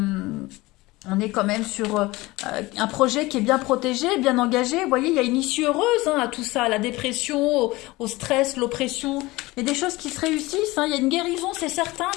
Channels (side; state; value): right; quieter; 20.7 dB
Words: On est quand même sur un projet qui est bien protégé, bien engagé. Vous voyez, il y a une issue heureuse hein, à tout ça, à la dépression, au stress, l'oppression. Il y a des choses qui se réussissent. Hein. Il y a une guérison, c'est certain,